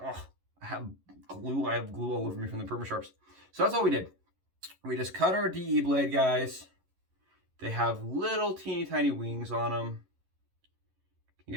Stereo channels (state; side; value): late; left; 11 ms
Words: Oh, I have glue all over me from the Permasharps. So that's all we did. We just cut our DE blade, guys. They have little teeny tiny wings on them. Can